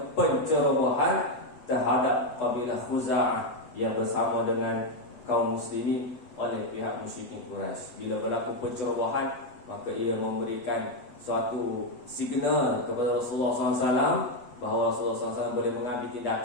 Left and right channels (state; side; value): late; right; 8.1 ms